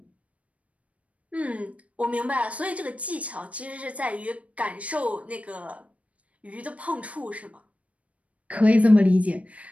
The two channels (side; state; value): left; late; 0.066 ms